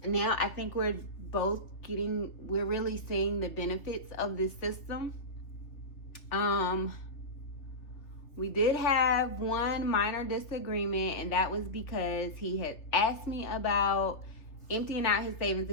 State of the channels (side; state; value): right; late; 3.5 ms